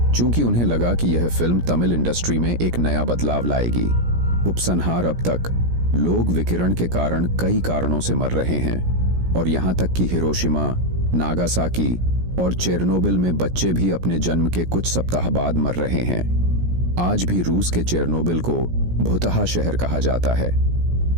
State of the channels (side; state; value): left; late; 17 ms